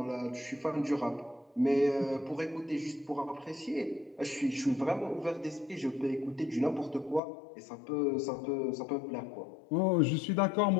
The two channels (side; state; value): right; drops out; at 7.2 s